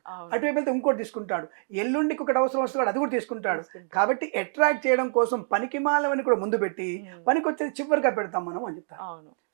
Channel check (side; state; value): left; silent; 60 dB below the other